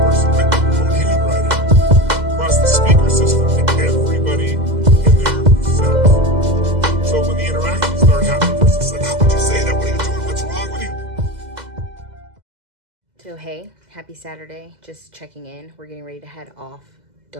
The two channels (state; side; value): late; left; 2.0 ms